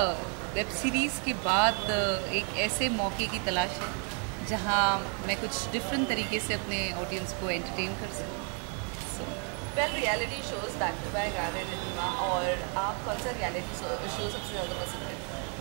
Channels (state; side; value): quieter; left; 39.8 dB